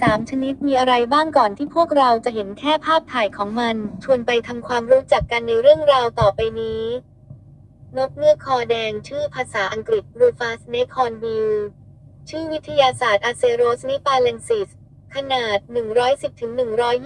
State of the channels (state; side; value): identical; both; correlation 1.00